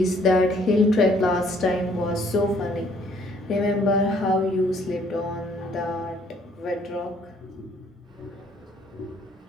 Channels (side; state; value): both; normal; correlation 0.63